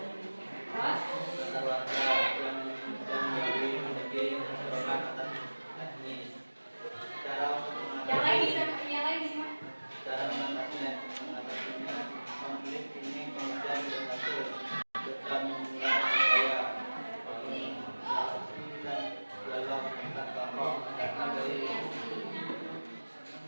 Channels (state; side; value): inverted; both; correlation -1.00